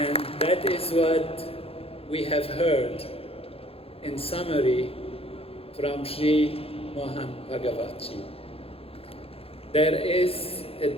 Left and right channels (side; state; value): right; late; 0.28 ms